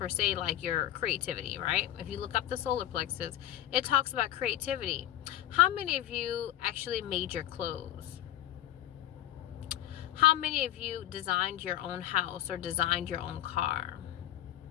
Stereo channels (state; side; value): quieter; right; 13.1 dB